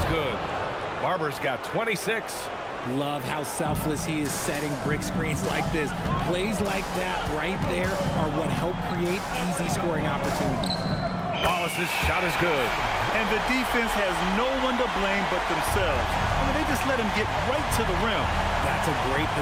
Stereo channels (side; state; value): both; identical; correlation 1.00